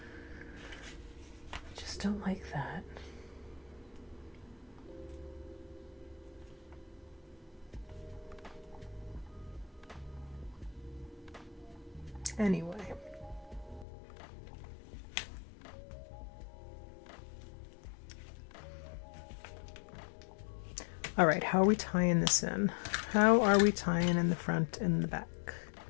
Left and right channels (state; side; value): drops out; right; at 13.9 s